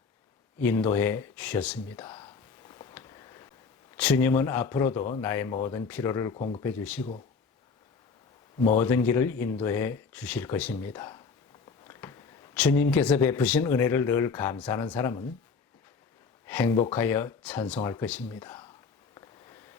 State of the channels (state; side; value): quieter; right; 5.1 dB